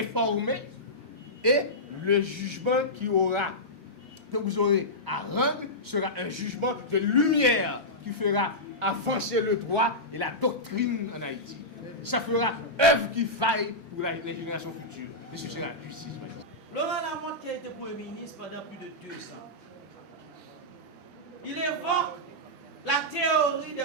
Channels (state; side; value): normal; both; correlation -0.12